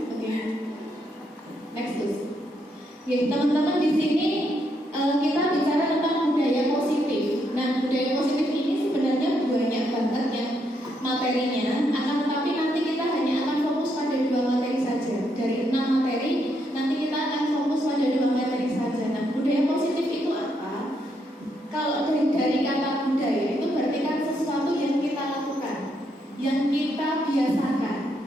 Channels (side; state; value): both; normal; correlation 0.77